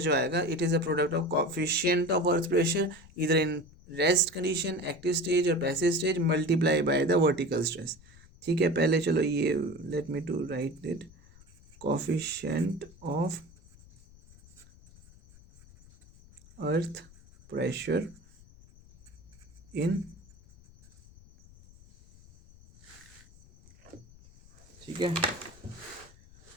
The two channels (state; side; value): noise; left; rumble, 24 dB below the sound